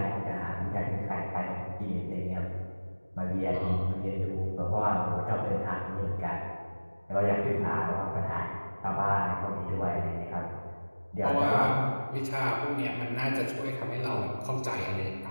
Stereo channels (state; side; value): inverted; both; correlation -1.00